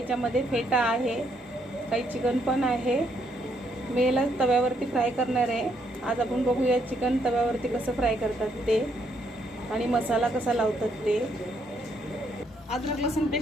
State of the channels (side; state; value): both; normal; correlation 0.73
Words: फेटा आहे, काही चिकन पण आहे। मी याला तव्यावरती फ्राय करणार आहे। आज आपण बघूया चिकन तव्यावरती कसं फ्राय करतात ते आणि मसाला कसा लावतात ते। अद्रक लसूण